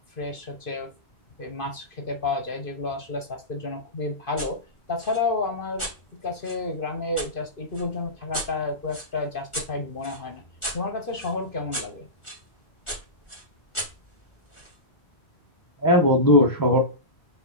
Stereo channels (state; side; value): late; right; 1.4 ms